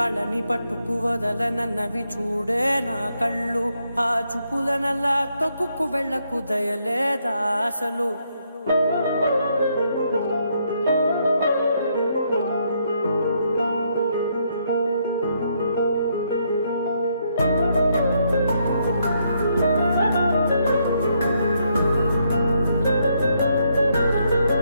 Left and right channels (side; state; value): both; inverted; correlation -0.75